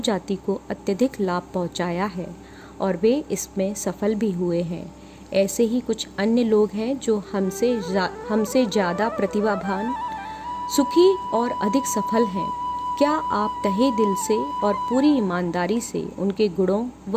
को अत्यधिक लाभ पहुंचाया है और वे इसमें सफल भी हुए हैं। ऐसे ही कुछ अन्य लोग हैं जो हमसे ज़्यादा प्रतिभावान, सुखी और अधिक सफल हैं। क्या आप तहे दिल से और पूरी ईमानदारी से उनके गुणों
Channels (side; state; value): both; identical; correlation 1.00